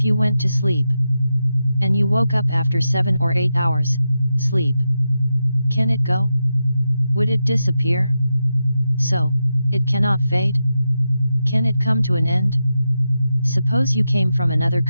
you went to sleep, and you woke up after 7 or 8 hours, sleep. Can it go? Would it disappear? So, it cannot fade? Can it come to an end? Suppose you came from another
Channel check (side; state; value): both; inverted; correlation -0.88